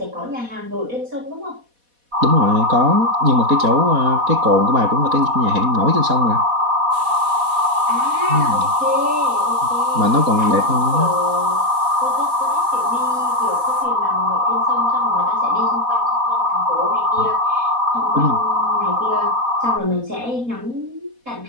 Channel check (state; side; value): late; left; 4.1 ms